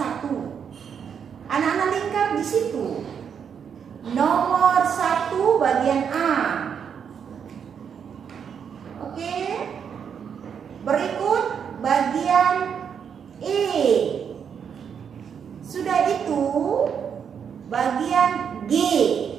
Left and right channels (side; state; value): left; quieter; 7.4 dB